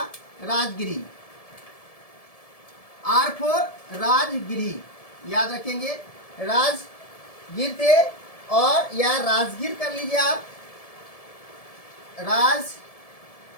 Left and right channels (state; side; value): late; right; 1.7 ms